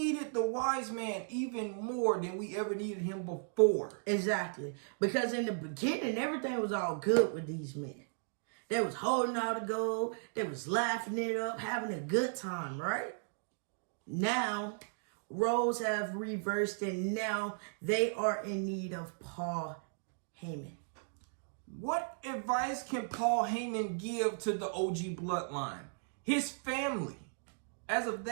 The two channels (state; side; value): silent; left; digital silence